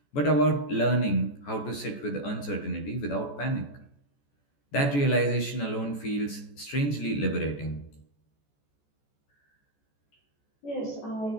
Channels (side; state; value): right; late; 14 ms